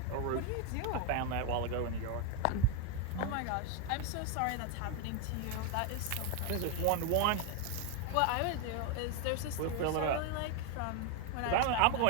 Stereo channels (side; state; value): both; different; correlation 0.02